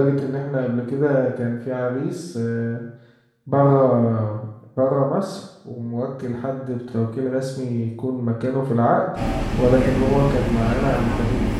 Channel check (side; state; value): both; identical; correlation 1.00